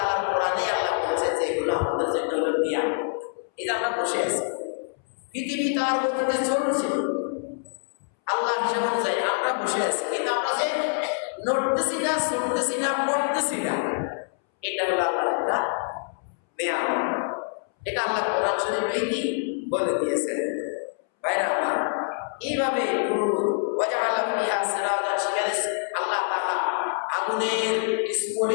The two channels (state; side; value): silent; right; 61 dB below the other